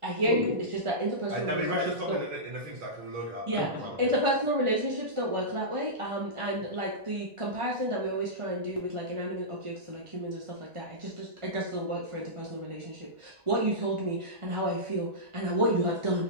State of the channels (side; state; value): left; late; 1.5 ms